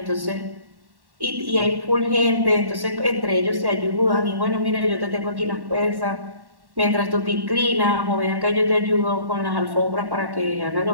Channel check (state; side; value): late; left; 1.1 ms